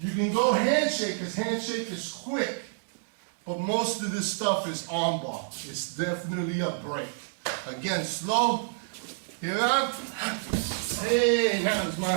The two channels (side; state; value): left; silent; digital silence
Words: can go handshake, because handshake is quick. But most of this stuff is arm bar. It's definitely a break. Again, slow. Here up. Hey, now it's